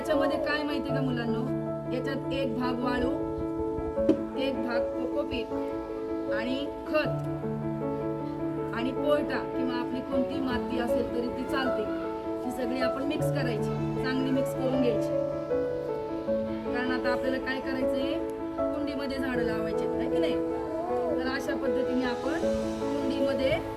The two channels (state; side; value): identical; both; correlation 1.00